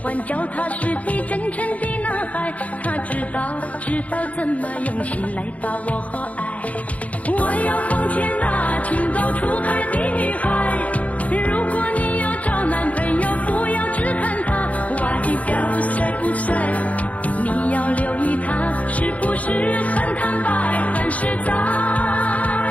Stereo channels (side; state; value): right; late; 0.068 ms